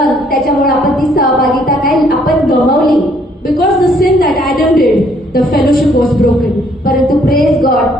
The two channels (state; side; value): normal; both; correlation 0.65